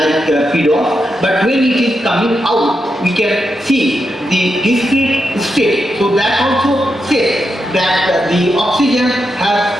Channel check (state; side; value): normal; both; correlation 0.85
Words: pedos. But when it is coming out, we can see the discrete state. So that also says that the oxygen